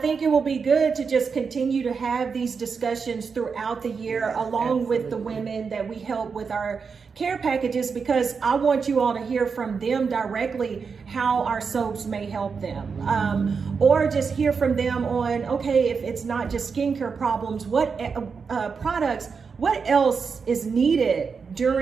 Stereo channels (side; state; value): left; quieter; 5.5 dB